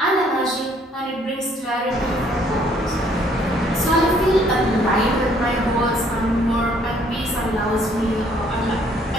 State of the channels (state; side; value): normal; both; correlation 0.63